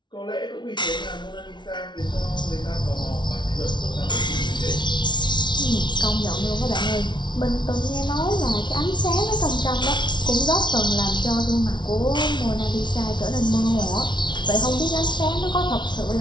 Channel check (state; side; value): late; right; 0.22 ms